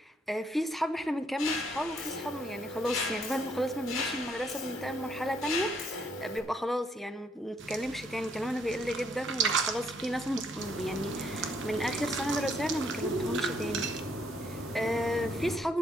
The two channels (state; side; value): normal; both; correlation 0.69